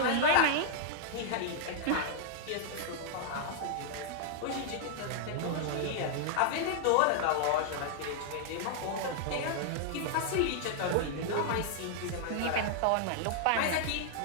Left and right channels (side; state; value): both; different; correlation -0.01